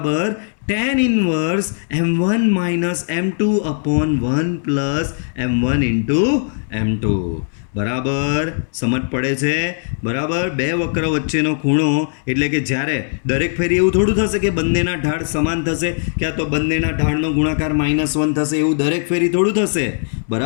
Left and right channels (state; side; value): silent; right; digital silence